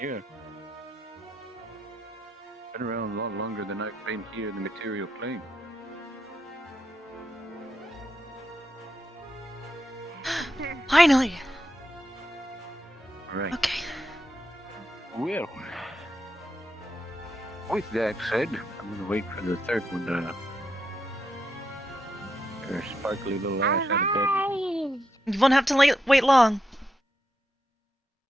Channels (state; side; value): normal; both; correlation 0.83